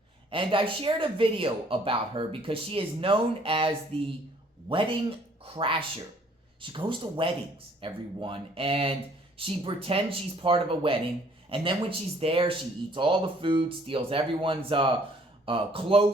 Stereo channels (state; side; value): normal; both; correlation 0.60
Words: And I shared a video about her because she is known as the wedding crasher. She goes to weddings, everyone, and she pretends she's part of a wedding. And then when she's there, she eats all the food, steals everyone's